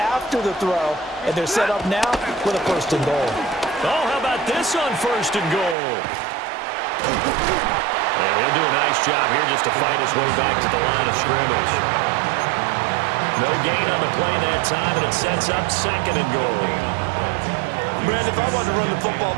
the throw. And they're set up now with a 1st and goal. Oh, how about this on 1st and goal? And he'll do a nice job here just to fight his way back to the line of scrimmage. No gain on the play that time, and it sets up 2nd and goal. Man, if I wanted to run the football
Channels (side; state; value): left; drops out; at 5.8 s